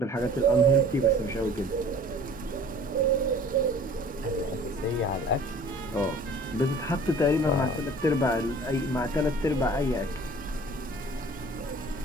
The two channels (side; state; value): both; normal; correlation 0.48